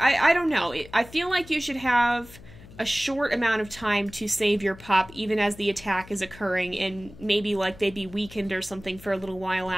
don't know, I feel like you should have a short amount of time to save your pup even as the attack is occurring, and maybe like they'd be weakened or something for a little while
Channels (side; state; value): left; noise; hum, 19 dB below the sound